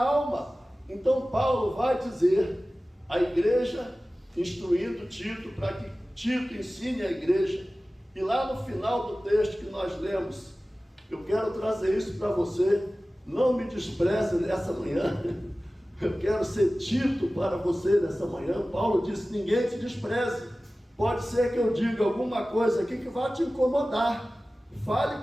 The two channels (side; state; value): both; normal; correlation 0.96